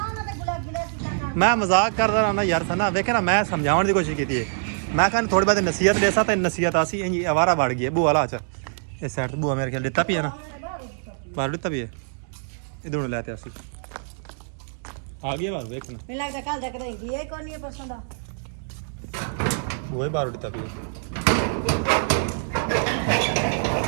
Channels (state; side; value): silent; left; digital silence